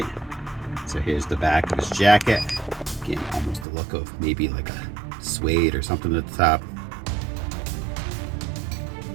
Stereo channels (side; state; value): left; drops out; at 3.7 s